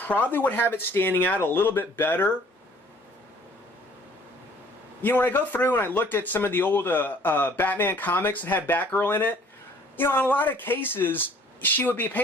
would have it standing out a little bit better. You know, when I go through and I looked at some of the old Batman comics that had Batgirl in it, you know, in a lot of cases, she would be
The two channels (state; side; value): normal; both; correlation 0.55